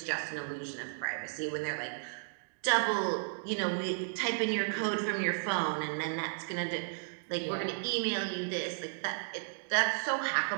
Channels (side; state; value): left; silent; digital silence